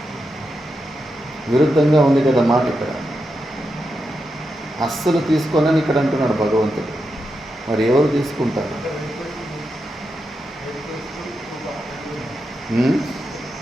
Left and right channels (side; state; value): both; normal; correlation 0.87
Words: విరుద్ధంగా ఉంది కదా మాట. ఇక్కడ అస్సలు తీసుకోనని ఇక్కడ అంటున్నాడు భగవంతుడు. మరి ఎవరు తీసుకుంటారు?